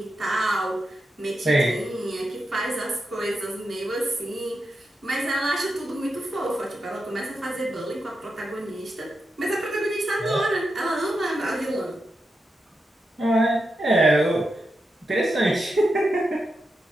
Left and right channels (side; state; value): both; normal; correlation 0.87